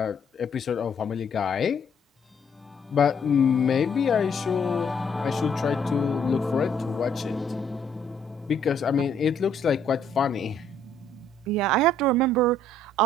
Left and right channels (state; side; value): normal; both; correlation 0.65